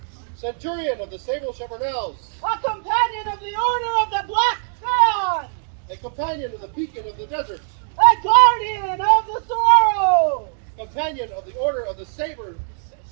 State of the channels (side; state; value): left; silent; digital silence